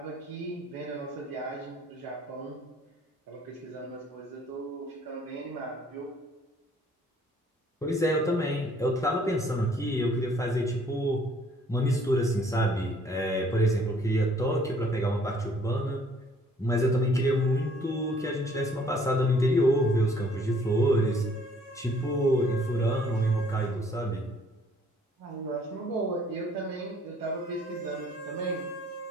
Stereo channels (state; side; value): normal; both; correlation 0.60